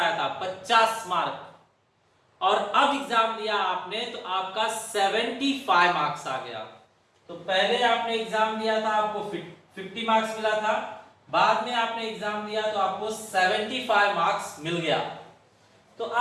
था, 50 मार्क, और अब एग्जाम दिया आपने तो आपका 75 मार्क्स आ गया। तो पहले आपने एग्जाम दिया था, आपको 50 मार्क्स मिला था, बाद में आपने एग्जाम दिया तो आपको 75 मार्क्स मिल गया। तो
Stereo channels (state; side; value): identical; both; correlation 1.00